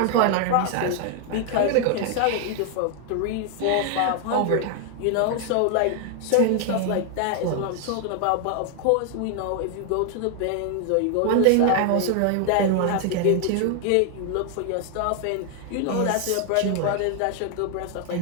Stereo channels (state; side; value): different; both; correlation 0.00